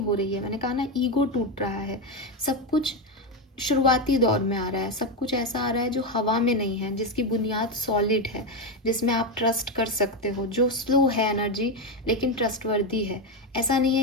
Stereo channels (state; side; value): normal; both; correlation 0.10